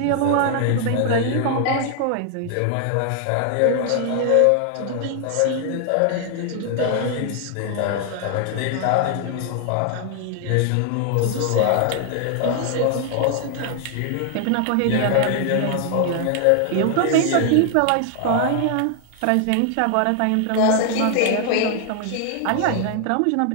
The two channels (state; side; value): different; both; correlation 0.00